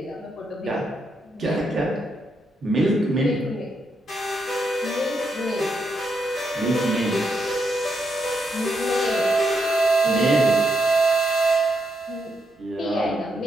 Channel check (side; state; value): both; normal; correlation 0.80